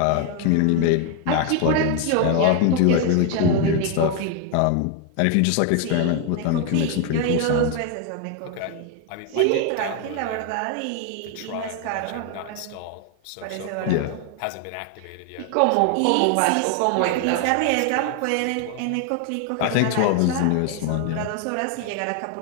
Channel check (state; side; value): different; both; correlation 0.01